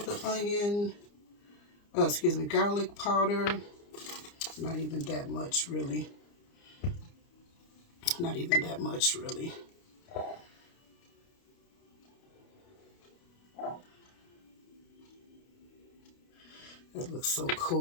the garlic powder. Not even that much, really. Not even that much, really. That looks so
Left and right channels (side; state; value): right; late; 29 ms